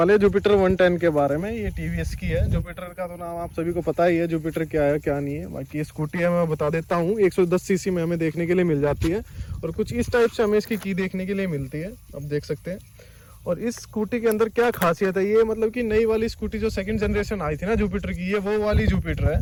हैं जुपिटर 110 के बारे में। ये टीवीएस की है। जुपिटर का तो नाम आप सभी को पता ही है, जुपिटर क्या है क्या नहीं है। बाकी ये स्कूटी है, मैं बता देता हूँ। 110 सीसी में हमें देखने के लिए मिल जाती है और कुछ इस टाइप से हमें इसकी की देखने के लिए मिलती है, आप देख सकते हैं। और इस स्कूटी के अंदर क्या खासियत है, ये मतलब कि नई वाली स्कूटी जो सेकंड जनरेशन आई थी ना जुपिटर की, ये वो वाली जुपिटर है।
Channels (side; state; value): both; identical; correlation 1.00